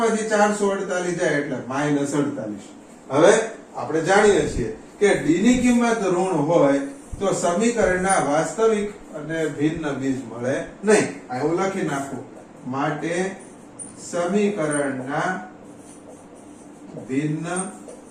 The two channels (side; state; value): both; identical; correlation 1.00